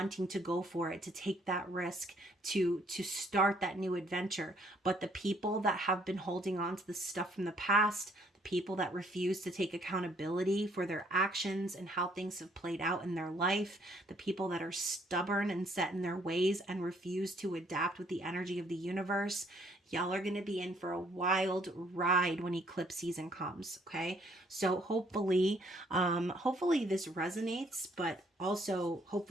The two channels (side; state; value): both; normal; correlation 0.65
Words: to go for it, to take that risk, to start that new adventure. But the people that have been holding on to the stuff from the past, the people that refuse to take accountability for their actions and how things have played out in their life, the people that are stubborn and set in their ways and refuse to adapt with the energy of the universe, y'all are going to be in for a wild ride when eclipse season comes, okay? So hopefully this resonates, but also